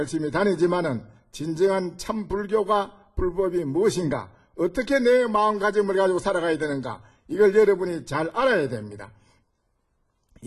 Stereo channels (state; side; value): identical; both; correlation 1.00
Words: 다니지만은 진정한 참 불법이 무엇인가, 어떻게 내 마음가짐을 가지고 살아가야 되는가, 이걸 여러분이 잘 알아야 됩니다.